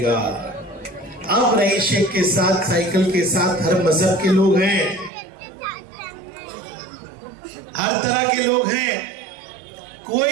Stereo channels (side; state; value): left; drops out; at 5.1 s